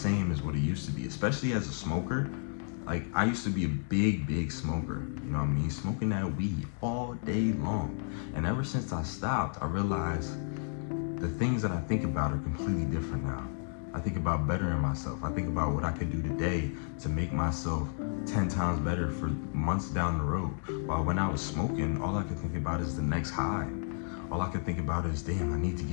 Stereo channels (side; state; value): right; silent; 56 dB below the other